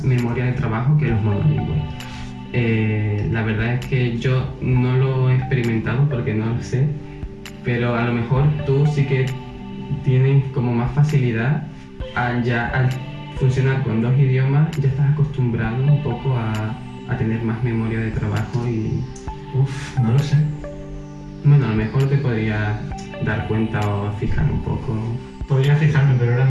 memoria de trabajo que los monolingües. La verdad es que yo no lo he experimentado porque no lo sé, pero a lo mejor tú sí que tienes como más facilidad al funcionar con dos idiomas, ya estás acostumbrado un poco a tener más memoria de trabajo y... No lo sé. Bueno, a lo mejor te podría dar cuenta o fijar un poco. Podría fijarme, pero ahora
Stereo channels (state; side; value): identical; both; correlation 1.00